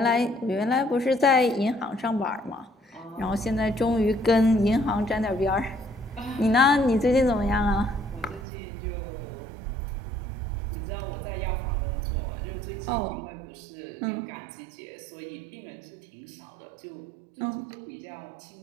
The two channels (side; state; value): left; drops out; at 8.5 s